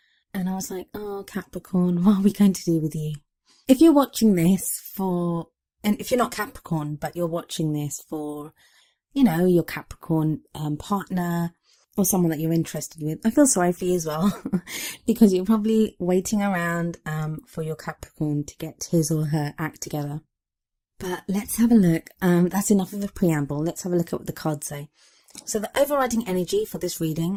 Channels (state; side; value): identical; both; correlation 1.00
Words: and I was like, oh Capricorn, what are we going to do with you? If you're watching this and if you're not Capricorn, but you're watching this for, your Capricorn partner or someone that you're interested with, I feel sorry for you as well because you're probably waiting around for your Capricorn to get his or her act together. But let's have a look. That's enough of a preamble. Let's have a look at what the cards say. So the overriding energy for this